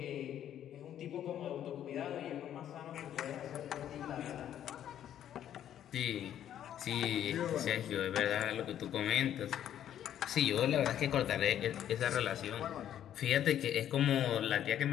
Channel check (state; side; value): quieter; right; 10.7 dB